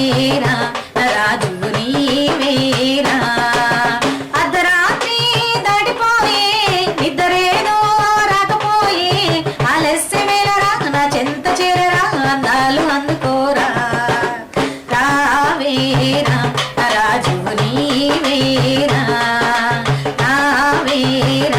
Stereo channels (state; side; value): identical; both; correlation 1.00